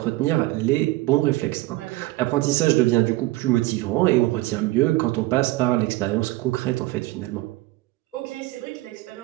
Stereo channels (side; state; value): left; quieter; 18.9 dB